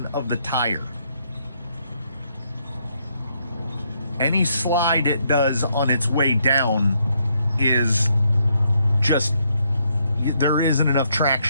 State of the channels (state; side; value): inverted; both; correlation -0.74